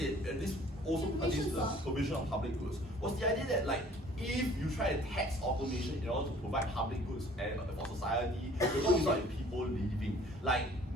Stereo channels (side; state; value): both; normal; correlation 0.53